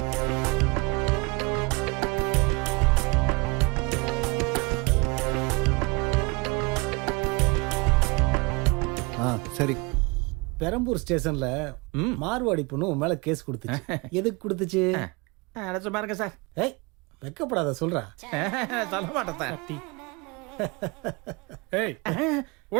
சரி. பெரம்பூர் ஸ்டேஷன்ல மார்வாடி பொண்ணு உன் மேல கேஸ் கொடுத்துச்சு. எதுக்கு கொடுத்துச்சு? பாருங்க சார். ஏய் வெக்கப்படாத, சொல்றா. சொல்ல மாட்டேன் சார். ஏய்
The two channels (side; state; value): left; quieter; 27.7 dB